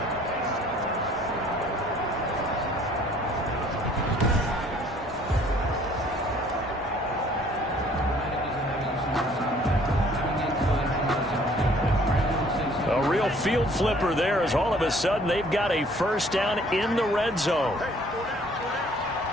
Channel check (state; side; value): normal; both; correlation 0.57